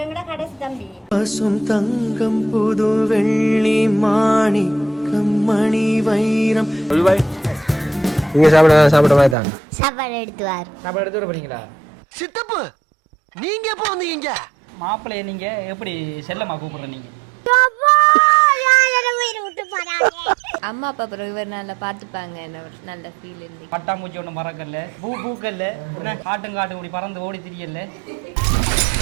எங்கட கடைசி தம்பி. பசும் தங்கம் புது வெள்ளி மாணிக்கம் மணி வைரம். நீங்க சாப்பிட மாதிரி தான் சாப்பாடு எடுத்துவார். சாப்பாடு எடுத்து வர போறீங்களா? சித்தப்பு நீங்க எப்போ வந்தீங்க? மாப்பிள்ளைய நீங்க எப்படி செல்லமா கூப்பிடுற நீங்க? அம்மா அப்பா அப்புறம் இவர் நல்லா பார்த்துப்பாங்க. நல்ல ஃபீல் இருந்து பட்டாம்பூச்சி ஒன்றும் பறக்கல, பூக்கல்ல, காட்டும் இப்படி பறந்து ஓடி திரியல.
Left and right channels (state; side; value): drops out; left; at 9.3 s